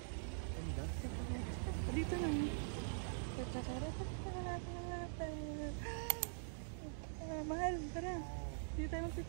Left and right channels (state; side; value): silent; left; digital silence